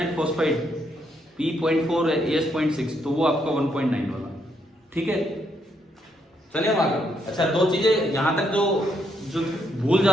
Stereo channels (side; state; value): both; normal; correlation 0.75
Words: फॉस्फाइड P.4 है, AS.6, तो वो आपका 1.9 वाला, ठीक है। चलिए हम आगे। अच्छा 2 चीजें यहां तक जो भूल